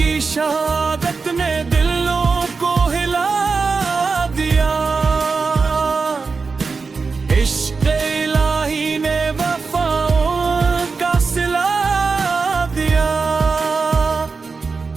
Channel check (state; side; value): quieter; left; 4.6 dB